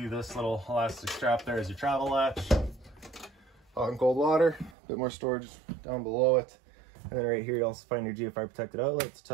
this little elastic strap there as your travel latch. Hot and cold water, a bit more storage down below it. And then right here you also find your GFI protected outlets,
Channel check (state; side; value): drops out; left; at 4.8 s